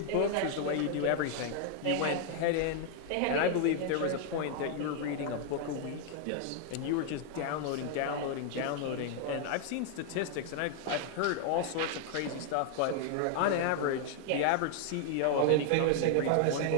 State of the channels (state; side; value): different; both; correlation 0.00